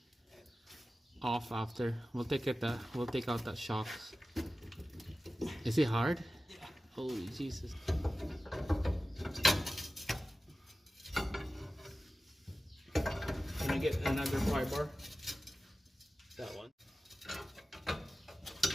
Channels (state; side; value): normal; both; correlation 0.95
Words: off after. We'll take out that shock. Is it hard? Yeah. Holy Jesus. Can I get another pry bar? That one.